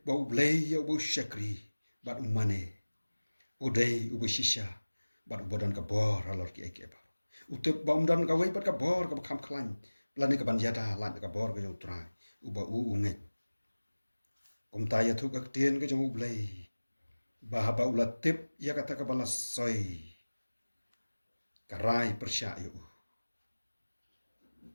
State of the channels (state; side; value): inverted; both; correlation -1.00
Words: ba ule ya bu shakri bat umane udai ubu shisha bat ubodan ka bor alor ki ek ba utip ba umdan ka wei bat ka bor ka kham khlan plani ka ban jata lan ka bor ka jong trai uba unge kum ta ya thu ka tien ka jong ublei ba ba ulat tip ya kata ka bala soi karai persya yu